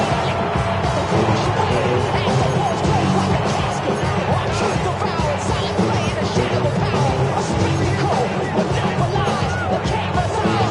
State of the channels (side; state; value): both; identical; correlation 1.00